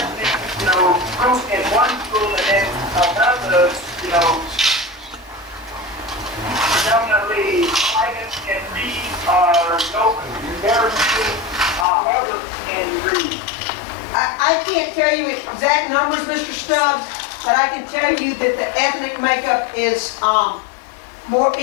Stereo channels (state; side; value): drops out; right; at 11.9 s